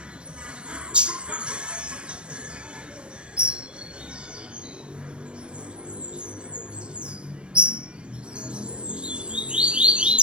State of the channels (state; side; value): late; left; 0.055 ms